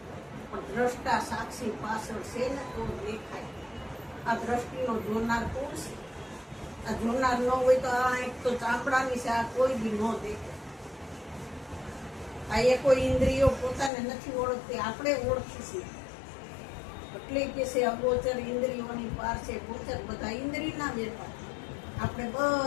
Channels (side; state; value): right; drops out; at 13.9 s